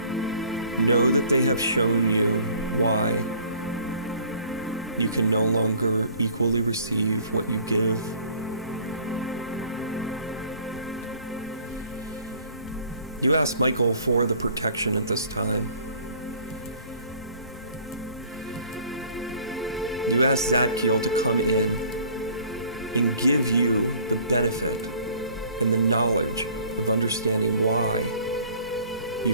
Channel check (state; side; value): inverted; both; correlation -0.53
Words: know that they have shown you why you can no longer equally receive what you give. You ask Michael for the protection at this time. You ask Zadkiel to come in and give you the benefit and the knowledge of understanding why you